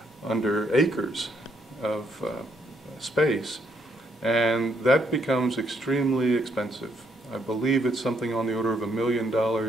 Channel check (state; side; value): normal; both; correlation 0.73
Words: under acres of space, and that becomes extremely expensive. I believe it's something on the order of $1 million